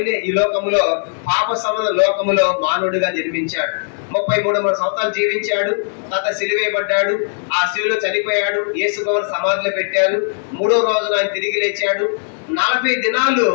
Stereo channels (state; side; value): silent; right; 67 dB below the other